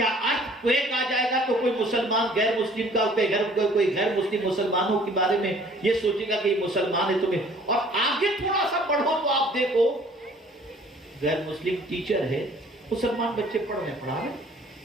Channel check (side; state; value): both; normal; correlation 0.55